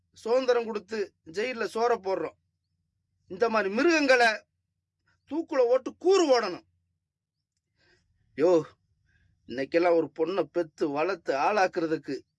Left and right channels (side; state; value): both; identical; correlation 1.00